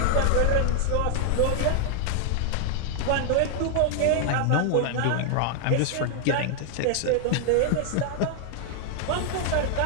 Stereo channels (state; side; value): different; both; correlation 0.00